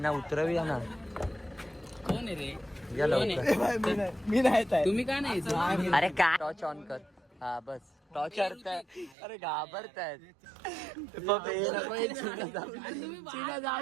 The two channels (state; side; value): drops out; left; at 9.2 s